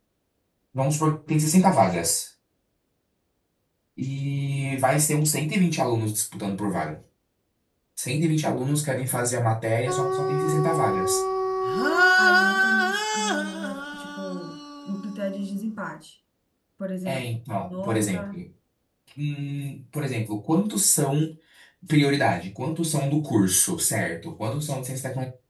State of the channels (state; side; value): identical; both; correlation 1.00